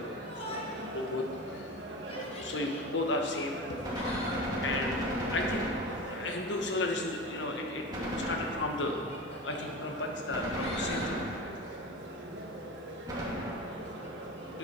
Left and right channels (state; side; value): normal; both; correlation 0.28